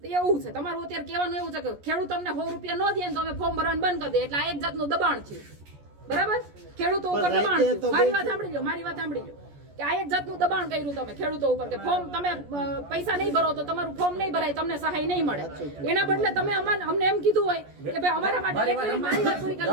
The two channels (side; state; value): left; late; 14 ms